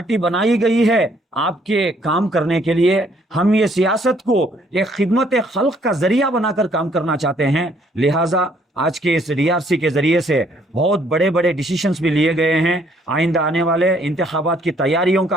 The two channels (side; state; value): both; normal; correlation 0.65